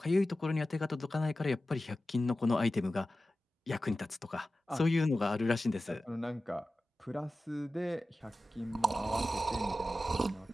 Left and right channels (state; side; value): normal; both; correlation 0.94